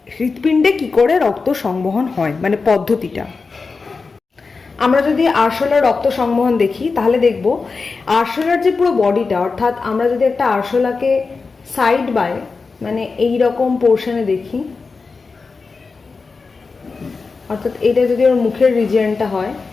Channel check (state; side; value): quieter; right; 4.4 dB